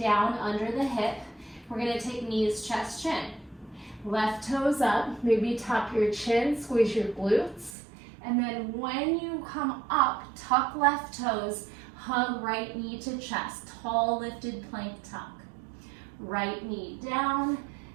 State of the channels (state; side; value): drops out; left; at 7.8 s